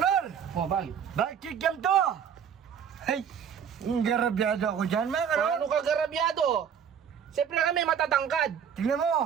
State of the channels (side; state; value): left; quieter; 7.9 dB